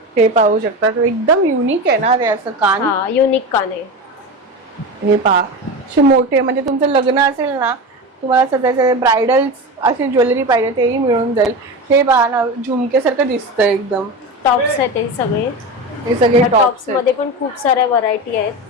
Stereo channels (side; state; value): both; normal; correlation 0.24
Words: हे पाहू शकतात, एकदम युनिक आहे ना ते असं कान. हा, युनिक कान आहे. हे पहा, असे मोठे, म्हणजे तुमचं लग्न असेल ना, तुम्हाला सध्याचे ब्रायडल्स अशी ज्वेलरी पाहिजे तेही मिळून जाईल. हे पहा ना, झुमकेसारखं दिसतं एकदम. टॉप्स आहेत हे सगळे. हे सगळे टॉप्स टॉप्स मध्ये पण खूप साऱ्या व्हरायटी आहेत.